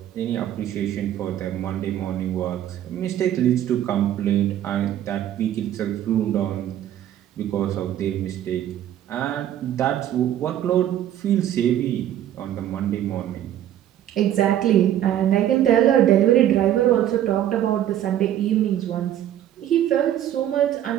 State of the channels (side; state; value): left; quieter; 11.5 dB